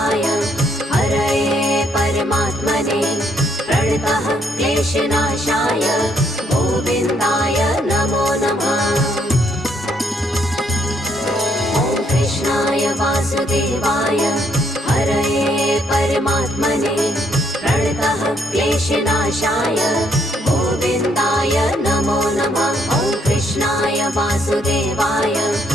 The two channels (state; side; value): normal; both; correlation 0.70